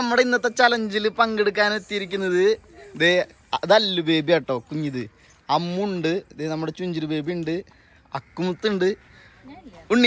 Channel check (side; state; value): both; identical; correlation 1.00